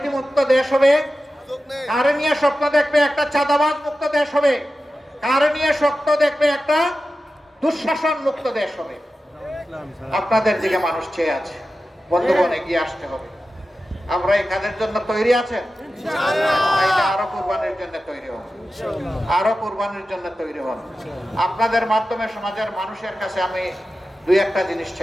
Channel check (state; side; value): normal; both; correlation 0.93